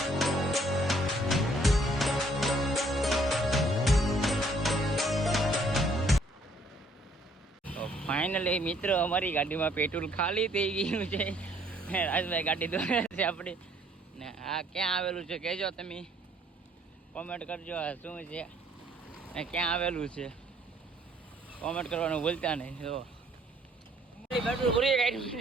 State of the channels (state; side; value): normal; both; correlation 0.63